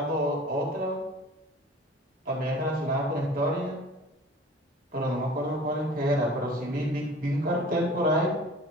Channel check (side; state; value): both; normal; correlation 0.44